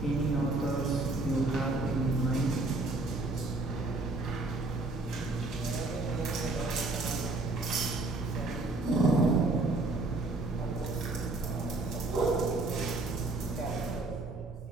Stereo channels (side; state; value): left; quieter; 3.1 dB